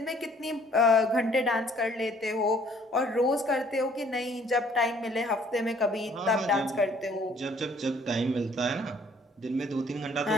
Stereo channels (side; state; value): both; normal; correlation 0.59